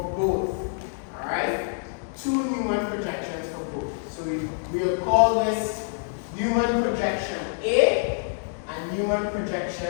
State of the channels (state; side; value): silent; right; digital silence